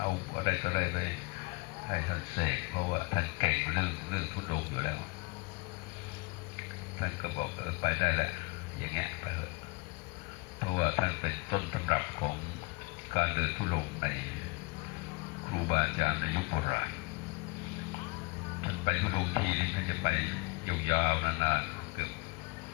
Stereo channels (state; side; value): quieter; right; 28.5 dB